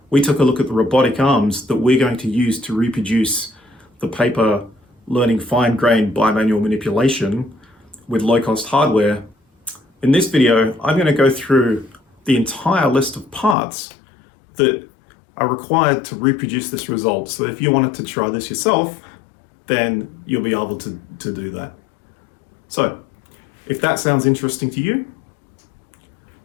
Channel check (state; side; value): drops out; right; at 13.6 s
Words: we took a look at the robotic arms that we're going to use to reproduce the paper learning fine-grained bimanual manipulation with low-cost hardware. In this video, I'm going to go through the entire list of parts that are required to reproduce this result. So if you wanted to try this yourself, then you'll be able to do that. So if that sounds interesting to you,